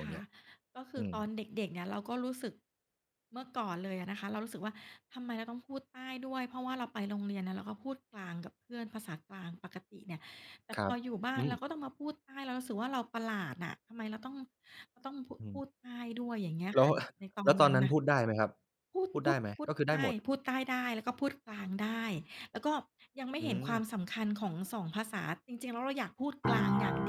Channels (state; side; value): identical; both; correlation 1.00